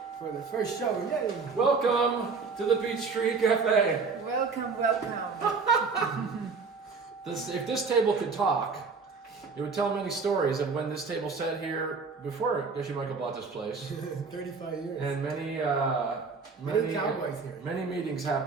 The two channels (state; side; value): quieter; left; 4.7 dB